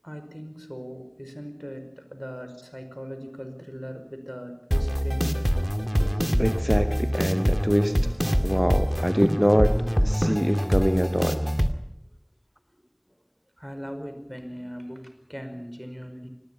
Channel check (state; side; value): identical; both; correlation 1.00